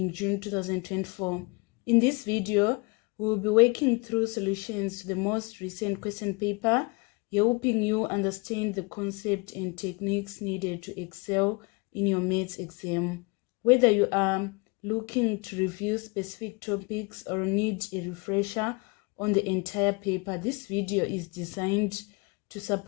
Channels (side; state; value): right; quieter; 28.9 dB